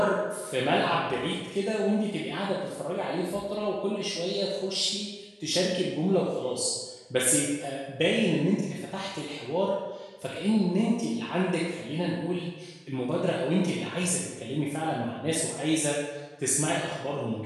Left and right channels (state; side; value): identical; both; correlation 1.00